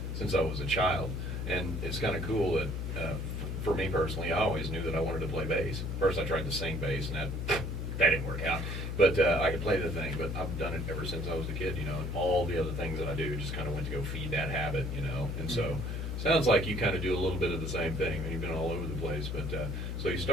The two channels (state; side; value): noise; left; hum, 3 dB below the sound